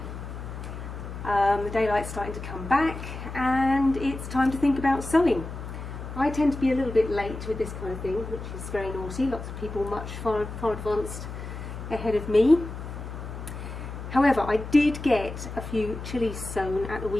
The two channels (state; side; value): noise; left; hum, 9 dB below the sound